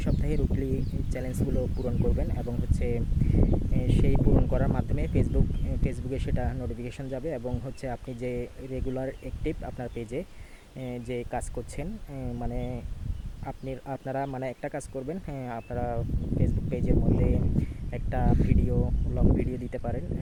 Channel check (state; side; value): identical; both; correlation 1.00